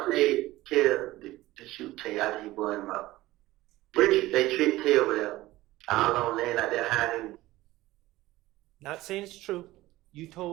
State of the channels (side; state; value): left; quieter; 17.5 dB